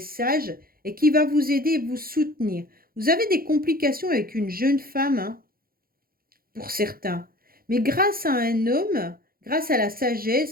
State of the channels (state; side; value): late; left; 0.43 ms